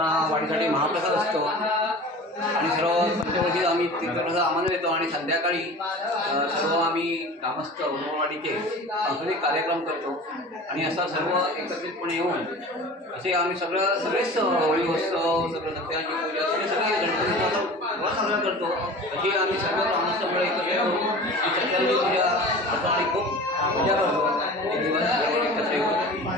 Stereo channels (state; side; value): normal; both; correlation 0.38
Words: वाढीसाठी महाप्रसाद असतो आणि सर्व पंचवर्षी आम्ही तीर्थप्रसाद आम्हाला देतो आणि संध्याकाळी सर्व आम्ही ग्रामस्थ औदुंबरवाडीचे सांस्कृतिक कार्यक्रम करतो आणि असा सर्व एकत्रितपणे येऊन असे आम्ही सगळेच होळी उत्सव सगळं सत्याची पूजा सगळे गणपतीचा साजरा करतो। अशी आम्ही सर्व ग्रामस्थ मंडळ एकत्र येऊन सत्याची पूजा करतो आणि खूप पूजा करतो। एक दिवस एकत्र येऊन